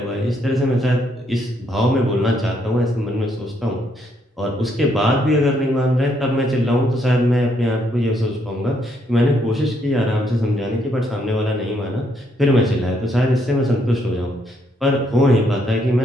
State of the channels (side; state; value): both; normal; correlation 0.73